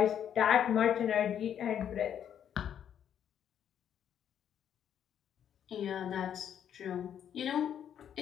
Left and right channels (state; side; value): quieter; right; 9.3 dB